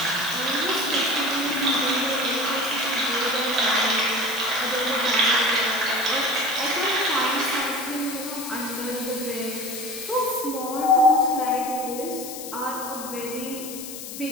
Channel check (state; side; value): noise; left; hiss, 10 dB below the sound